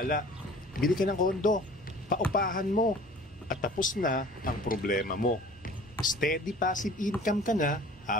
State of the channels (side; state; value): both; normal; correlation 0.46